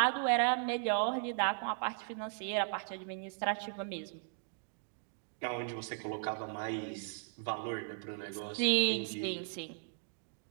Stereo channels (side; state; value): left; silent; digital silence